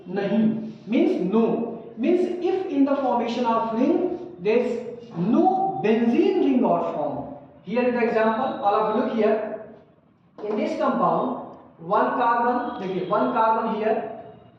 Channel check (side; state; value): both; identical; correlation 1.00